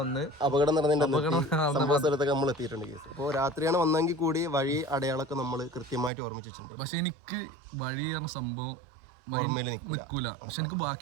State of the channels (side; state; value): left; drops out; at 6.1 s